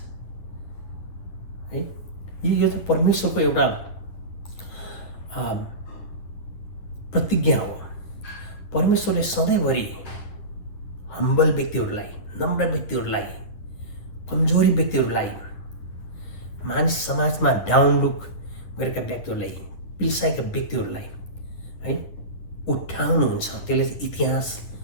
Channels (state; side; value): late; right; 10 ms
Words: है। यो चाहिँ परमेश्वरको एउटा प्रतिज्ञा हो। परमेश्वरले सधैँभरि हम्बल व्यक्तिहरूलाई, नम्र व्यक्तिहरूलाई, कमजोरी व्यक्तिहरूलाई, मानिस समाजमा डाउन लुक गरेका व्यक्तिहरूलाई, पिल्साएका व्यक्तिहरूलाई है उठाउनुहुन्छ। त्यसले चाहिँ इतिहास